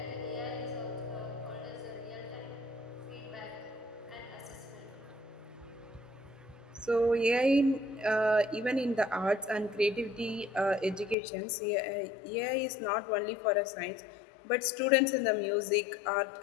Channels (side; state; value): right; drops out; at 11.2 s